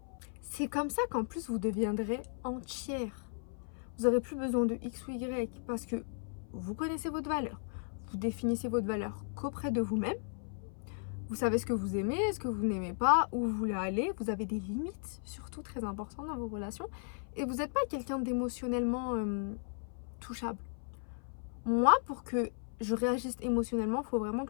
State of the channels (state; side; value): silent; right; 54 dB below the other